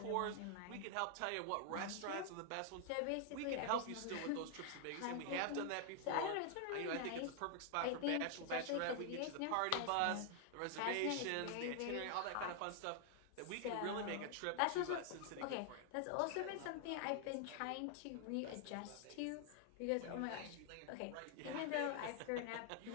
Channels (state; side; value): different; both; correlation 0.00